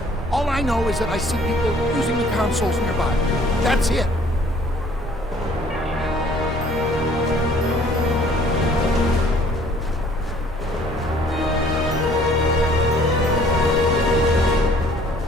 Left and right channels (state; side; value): normal; both; correlation 0.57